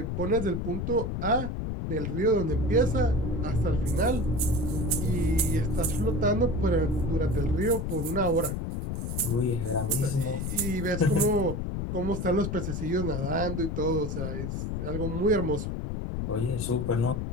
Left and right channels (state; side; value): noise; left; rumble, 3 dB below the sound